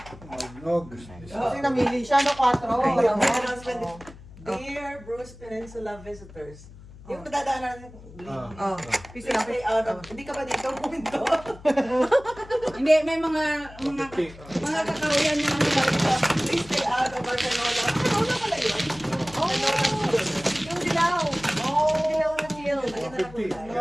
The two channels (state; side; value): noise; left; hum, 19 dB below the sound